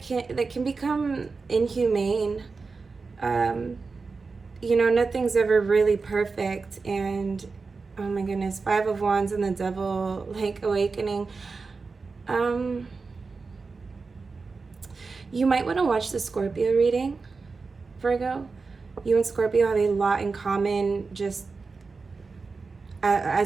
can become inhumane. You know, nothing's ever really perfect, and oh my goodness, 5 of Wands and the Devil, like, awakening. You might want to watch the Scorpio reading, Virgo. You and Scorpio have a lot in common, just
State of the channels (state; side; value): quieter; left; 4.4 dB